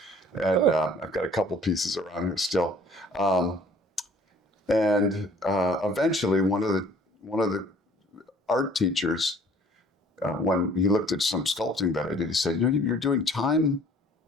and I've got a couple pieces around here still. And eventually, one of the art teachers, when he looked at some sculpting that I did, he said, you're doing time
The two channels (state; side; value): normal; both; correlation 0.54